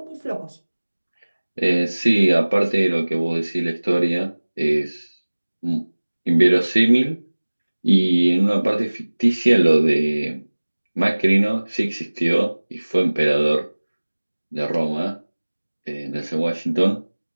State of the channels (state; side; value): inverted; both; correlation -1.00